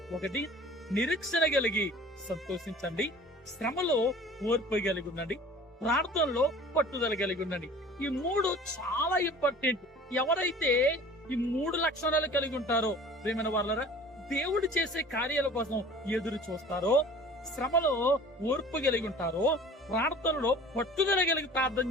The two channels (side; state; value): both; normal; correlation 0.45